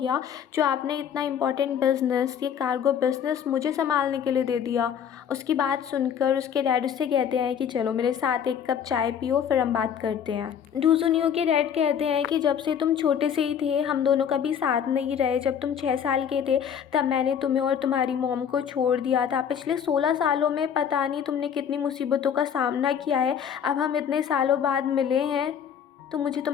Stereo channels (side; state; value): right; quieter; 8.2 dB